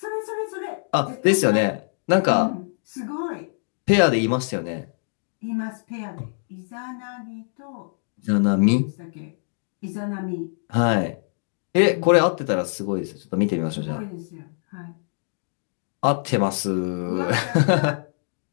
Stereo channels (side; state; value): right; silent; digital silence